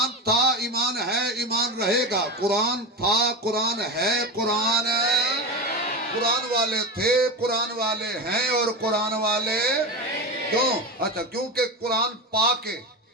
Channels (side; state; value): both; normal; correlation 0.21